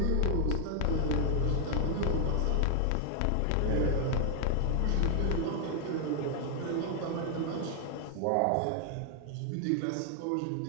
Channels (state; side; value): different; both; correlation 0.00